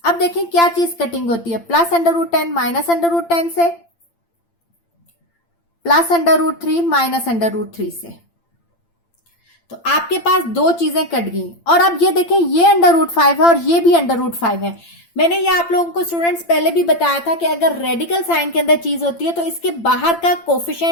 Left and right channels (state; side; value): late; right; 8.8 ms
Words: अब देखें क्या चीज कटिंग होती है, प्लस √10 माइनस √10 से, प्लस √3 माइनस √3 से। तो आपके पास दो चीजें कट गई। और अब ये देखें ये √5 है और ये भी √5 है। मैंने ये आप लोगों को स्टूडेंट्स पहले भी बताया था कि अगर रेडिकल साइन के अंदर चीज होती है तो इसके बाहर का